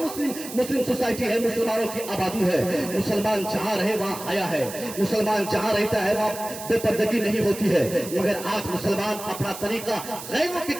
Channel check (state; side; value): noise; right; hiss, 11 dB below the sound